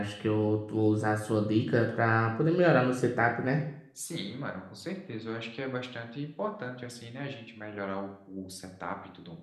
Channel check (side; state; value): both; identical; correlation 1.00